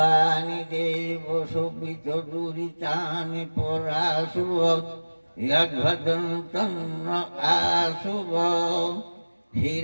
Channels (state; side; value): inverted; both; correlation -1.00